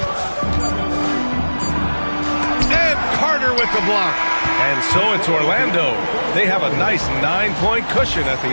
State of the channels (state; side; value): inverted; both; correlation -1.00